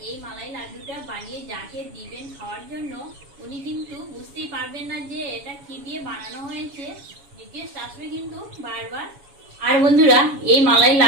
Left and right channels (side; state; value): left; late; 7.1 ms